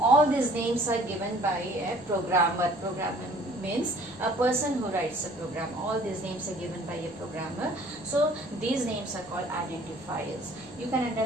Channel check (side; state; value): left; noise; rumble, 30 dB below the sound